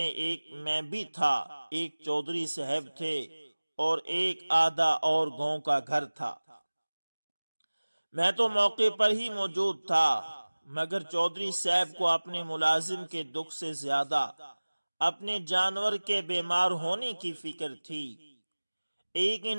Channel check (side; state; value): both; inverted; correlation -1.00